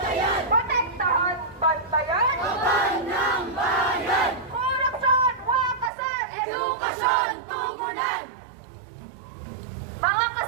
Protektahan, bantayan! Kaban ng bayan! Korupsyon, wakasan! Edukasyon, tugunan! Mga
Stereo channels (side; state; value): left; drops out; at 5.9 s